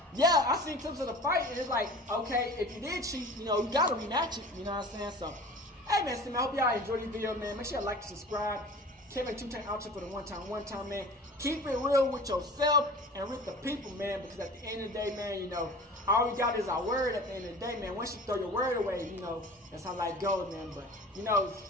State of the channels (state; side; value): normal; both; correlation 0.41